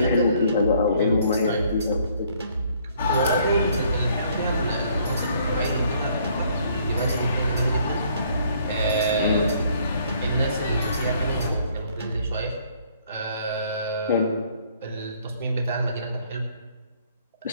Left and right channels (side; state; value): both; inverted; correlation -0.63